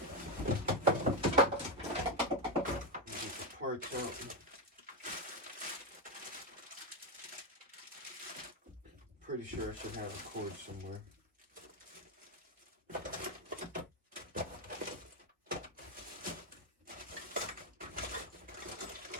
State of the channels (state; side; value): normal; both; correlation 0.09